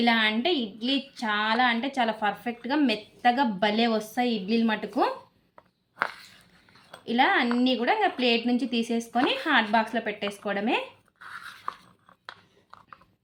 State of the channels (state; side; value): identical; both; correlation 1.00